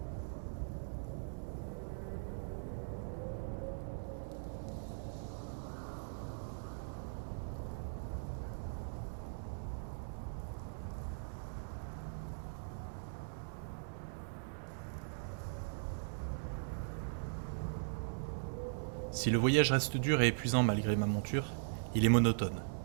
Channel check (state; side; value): silent; left; digital silence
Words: Si le voyage reste dur et épuisant malgré ma monture, il est monotone.